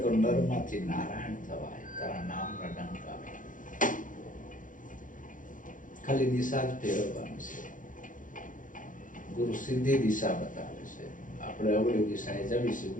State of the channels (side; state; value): right; late; 0.38 ms